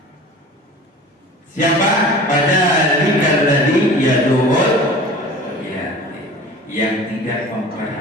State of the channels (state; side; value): normal; both; correlation 0.40